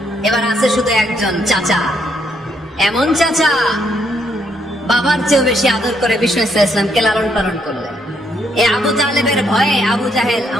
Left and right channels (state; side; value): normal; both; correlation 0.73